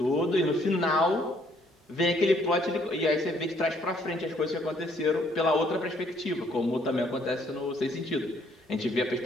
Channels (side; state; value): both; normal; correlation 0.66